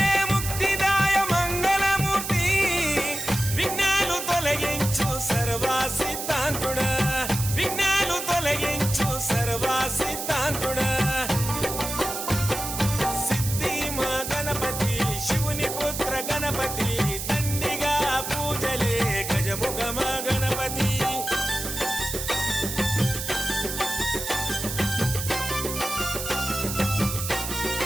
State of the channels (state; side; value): noise; right; hiss, 5 dB below the sound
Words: ముక్తిదాయ మంగళమూర్తి విఘ్నాలు తొలగించు సర్వా సిద్ధాంతుడా విఘ్నాలు తొలగించు సర్వా సిద్ధాంతుడా సిద్ధి మా గణపతి శివుని పుత్ర గణపతి దండిగా పూజలే గజముఖ మా గణపతి